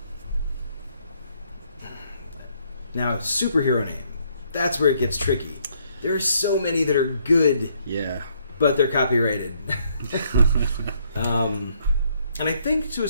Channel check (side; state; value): both; inverted; correlation -0.69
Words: Now, superhero name. That's where it gets tricky. There are so many that are good. Yeah. But they're copyrighted. And I think to a